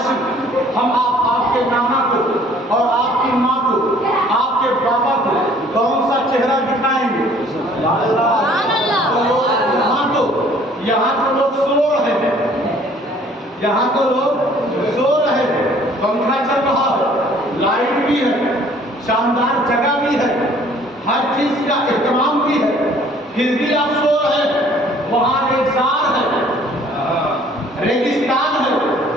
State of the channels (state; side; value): normal; both; correlation 0.56